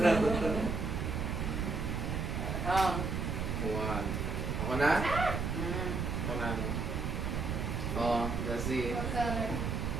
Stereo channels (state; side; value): noise; right; rumble, 1 dB below the sound